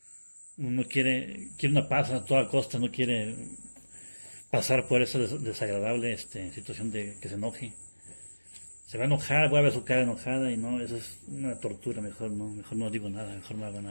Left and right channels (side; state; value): both; inverted; correlation -1.00